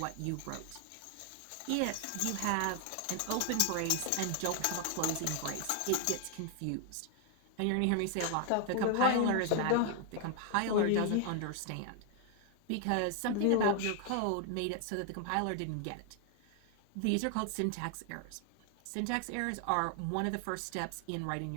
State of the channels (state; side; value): different; both; correlation 0.00